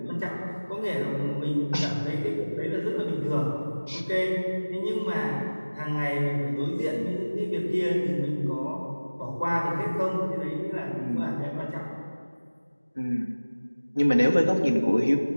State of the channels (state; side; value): inverted; both; correlation -1.00